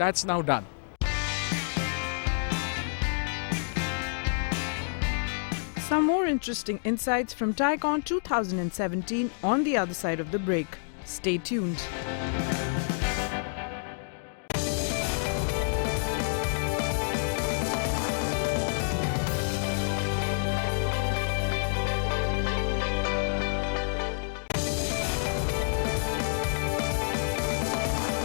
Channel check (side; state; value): right; silent; digital silence